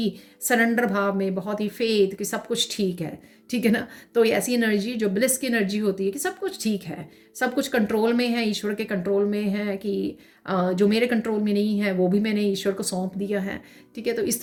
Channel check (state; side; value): identical; both; correlation 1.00